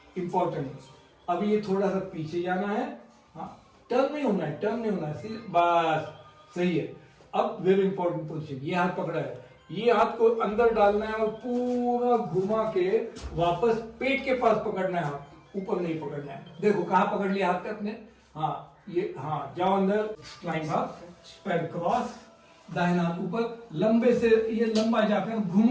इंपॉर्टेंट। अभी ये थोड़ा सा पीछे जाना है, हाँ टर्न नहीं होना है, बस सही है। अब वेरी इंपॉर्टेंट पोजीशन, ये हाथ पकड़ा है, ये हाथ को अंदर डालना है और पूरा घुमा के वापस पेट के पास पकड़ना है। हाथ ऊपर नहीं पकड़ना है। देखो कहाँ पकड़ लिया हाथ अपने, हाँ ये, हाँ जाओ अंदर, क्लाइंब अप, पैर क्रॉस, दाहिना हाथ ऊपर, लंबे से ये लंबा जाकर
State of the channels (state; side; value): identical; both; correlation 1.00